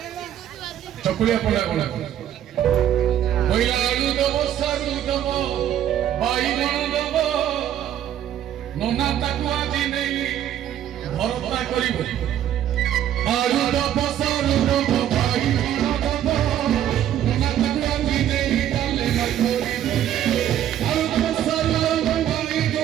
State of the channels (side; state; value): left; quieter; 11.0 dB